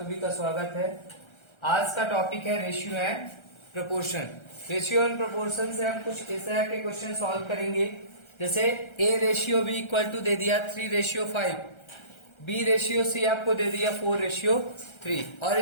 का स्वागत है। आज का टॉपिक है ratio and proportion. Ratio and proportion से हम कुछ इस तरह के क्वेश्चन सॉल्व करेंगे, जैसे A ratio B equal to दे दिया 3:5, बी रेशियो सी आपको दे दिया 4:3 और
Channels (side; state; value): right; late; 1.3 ms